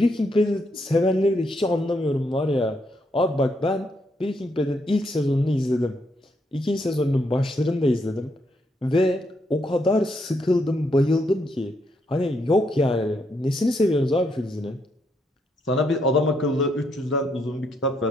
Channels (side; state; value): both; normal; correlation 0.77